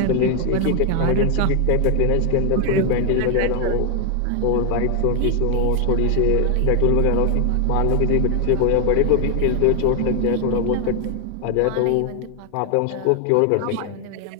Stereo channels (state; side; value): different; both; correlation 0.00